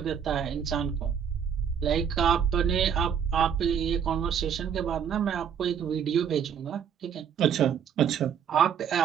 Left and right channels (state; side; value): quieter; left; 8.0 dB